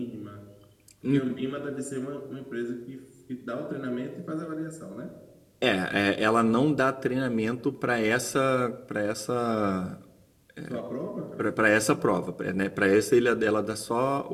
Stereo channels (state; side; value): identical; both; correlation 1.00